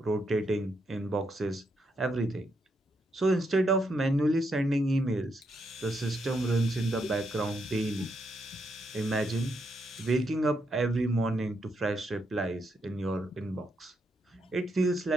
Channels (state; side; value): normal; both; correlation 0.79